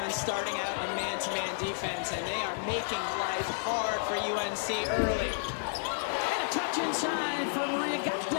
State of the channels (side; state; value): right; silent; digital silence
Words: starting out in man-to-man defense, and they are making life hard for UNC early. And a touch inside for Maria